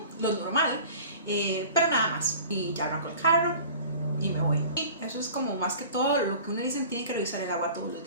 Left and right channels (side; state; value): both; inverted; correlation -0.43